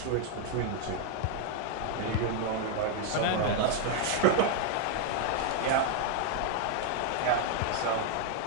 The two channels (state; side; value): different; both; correlation 0.00